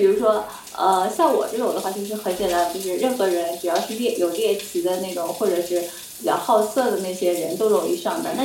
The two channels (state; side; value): identical; both; correlation 1.00